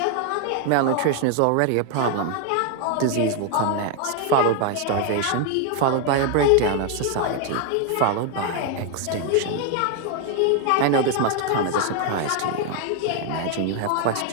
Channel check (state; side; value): different; both; correlation 0.01